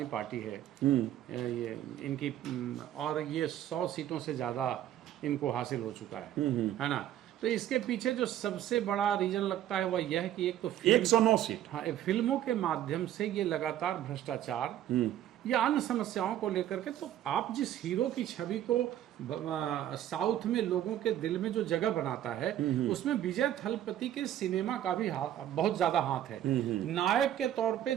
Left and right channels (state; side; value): quieter; left; 11.8 dB